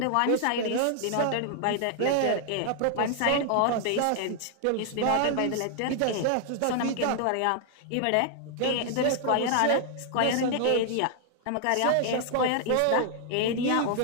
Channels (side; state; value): both; different; correlation 0.00